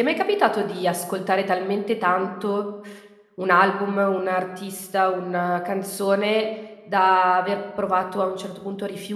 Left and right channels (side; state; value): both; identical; correlation 1.00